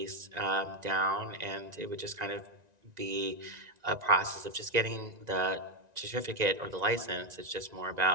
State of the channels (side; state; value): left; late; 1.9 ms